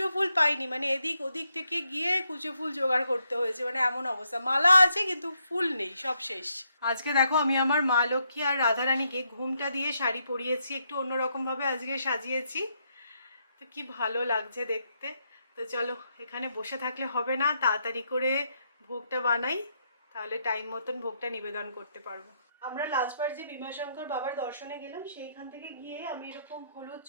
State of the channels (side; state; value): both; inverted; correlation -0.78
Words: ফুল পাইনি, মানে এদিক ওদিক থেকে গিয়ে কুচো ফুল জোগাড় করতে হয়েছে, মানে এমন অবস্থা। মালা আছে কিন্তু ফুল নেই, সব শেষ। আজকে দেখো, আমি আমার মা লক্ষ্মী আর রাধারানীকে ঘুমটা দিয়ে শাড়ি পরিয়েছি, একটু অন্যরকমভাবে আজকে সাজিয়েছি। তো কি ভালো লাগছে দেখতে। তো চলো, এখানে বসে থাকলে হবে না, তাড়াতাড়ি করে ভোগটা বানাই, তাহলে টাইম মতন ভোগটা নিবেদন করতে পারবো। আমরা লাস্টবার যে ভীমাশঙ্কর বাবার দর্শনে গেলাম, সেইখান থেকে গিয়ে আমি এরকম হলুদ